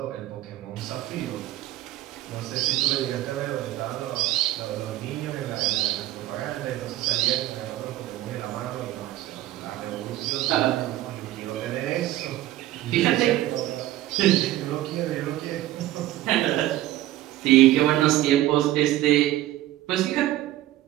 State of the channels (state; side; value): quieter; left; 14.9 dB